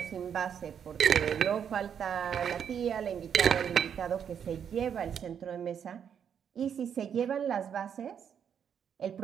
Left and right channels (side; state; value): left; quieter; 8.1 dB